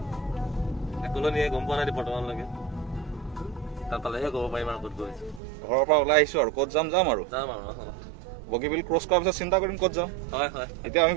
একলনিয়ে গম পোৱা নাই বৰ্তমানলৈকে তাত পালেহে ক'ব পাৰিম আৰু ক'ত গৈছো ঘৰৰ পৰা ওলাই আহিছো আৰু ক'ত যাম আৰু বগীবিল ক্ৰছ কৰাৰ পিছত চিন্তা কৰিম ক'ত যাম হয় হয় এতিয়া আমি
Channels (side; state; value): left; drops out; at 5.4 s